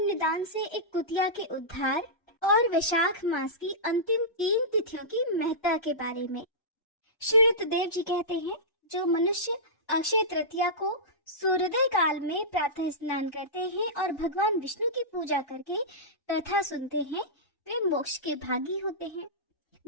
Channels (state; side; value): late; right; 1.3 ms